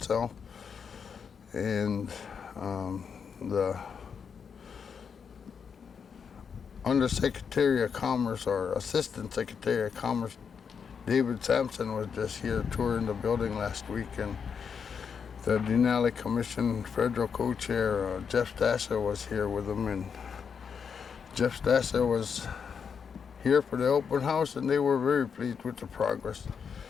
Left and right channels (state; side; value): quieter; right; 6.5 dB